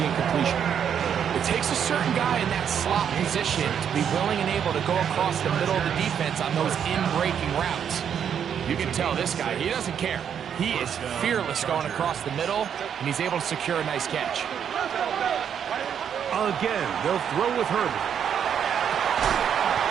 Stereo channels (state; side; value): quieter; left; 8.3 dB